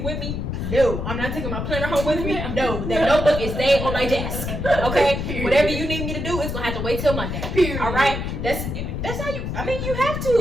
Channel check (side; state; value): left; noise; rumble, 4 dB below the sound